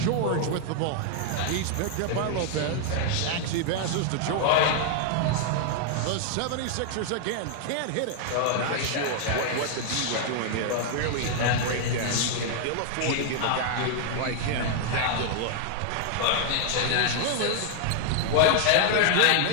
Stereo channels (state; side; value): different; both; correlation 0.00